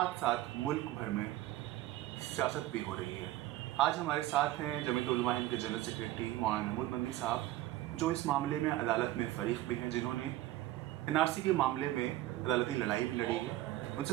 ساتھ ملک بھر میں سیاست بھی ہو رہی ہے۔ آج ہمارے ساتھ ہیں جمعیت علماء ہند کے جنرل سیکریٹری مولانا محمود مدنی صاحب، جو اس معاملے میں عدالت میں فریق بھی ہیں، جنہوں نے NRC کے معاملے میں عدالتی لڑائی بھی لڑی ہے۔ ان سے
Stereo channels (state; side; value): quieter; left; 15.4 dB